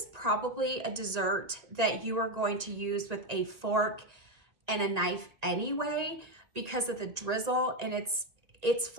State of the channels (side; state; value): left; late; 1.9 ms